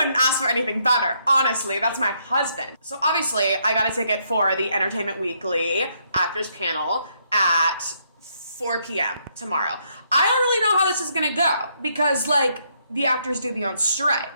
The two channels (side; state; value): both; inverted; correlation -0.73